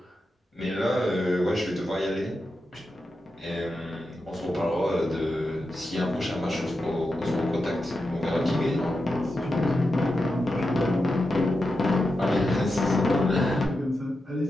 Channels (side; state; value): both; normal; correlation 0.89